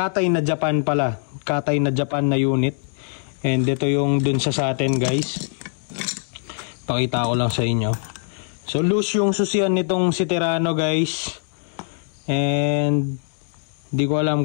na Japan pala, Katay na Japan na unit. And ito yung dun sa atin guys. Pakita ko lang sa inyo. So loose yung susian nitong si Terrano guys. And di ko alam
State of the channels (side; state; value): right; silent; 64 dB below the other